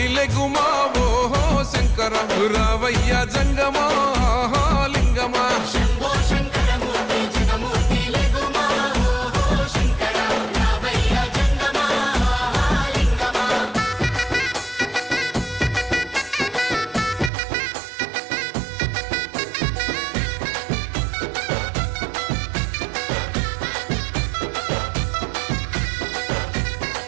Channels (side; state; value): left; drops out; at 17.3 s